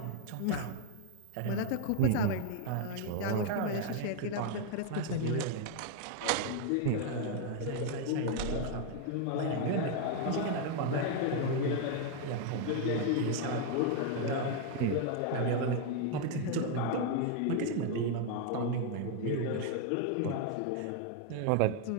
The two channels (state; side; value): different; both; correlation 0.00